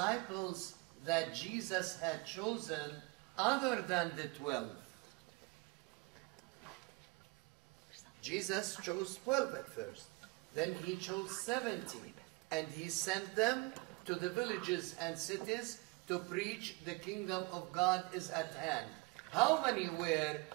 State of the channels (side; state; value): left; quieter; 25.8 dB